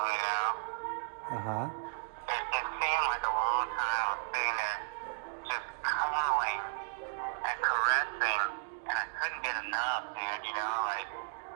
know. It seemed like a long time I was sitting there just cuddling and caressing, and I couldn't get enough, dude, you know, like,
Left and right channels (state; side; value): silent; left; digital silence